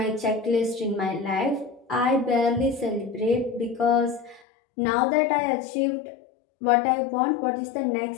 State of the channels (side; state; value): right; drops out; at 4.4 s